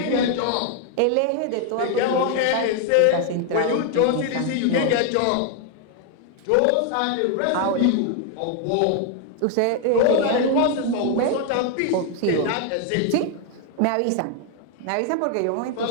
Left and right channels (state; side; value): different; both; correlation 0.01